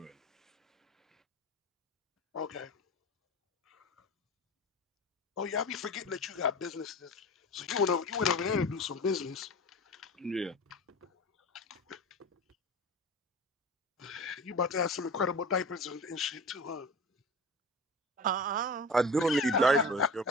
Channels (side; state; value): both; normal; correlation 0.34